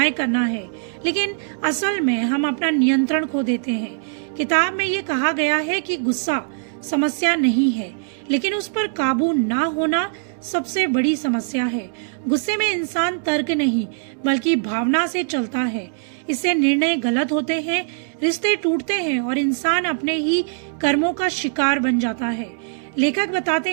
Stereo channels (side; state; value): left; silent; digital silence